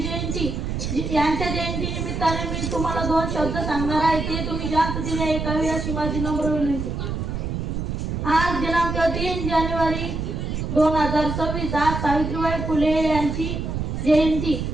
जयंती. यांच्या जयंती निमित्ताने मी तुम्हाला 2 शब्द सांगणार आहे, ते तुम्ही शांततेने ऐकावे अशी माझी नम्र विनंती. आज दिनांक 3 जानेवारी 2026 आज सावित्रीबाई फुले यांची जयंती.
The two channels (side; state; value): right; noise; rumble, 3 dB below the sound